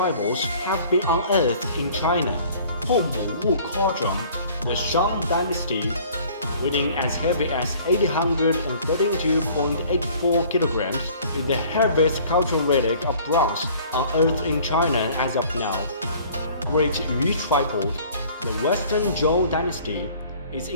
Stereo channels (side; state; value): both; inverted; correlation -0.52